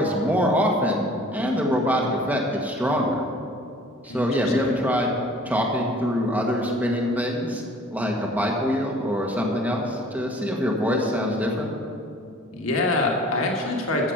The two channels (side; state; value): both; normal; correlation 0.50